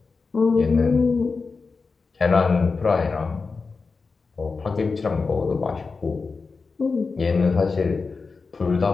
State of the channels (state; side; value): quieter; right; 4.5 dB